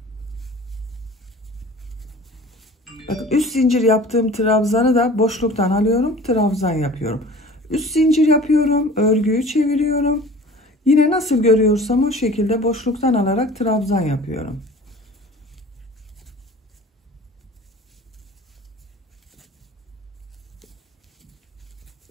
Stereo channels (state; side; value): normal; both; correlation 0.43